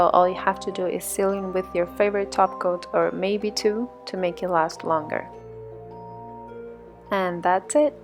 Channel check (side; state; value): both; identical; correlation 1.00